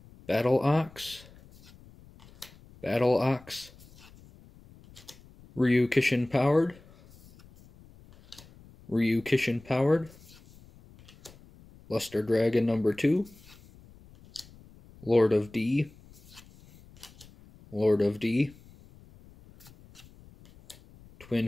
Battle Ox, Ryu Kishin Powered, Luster Dragon number 2, Lord of D,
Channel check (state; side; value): noise; left; rumble, 24 dB below the sound